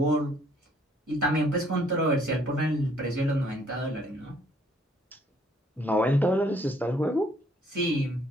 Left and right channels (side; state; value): both; normal; correlation 0.64